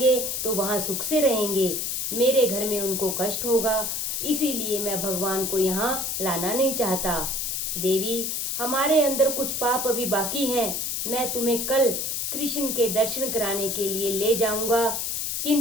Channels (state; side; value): noise; left; hiss, 1 dB below the sound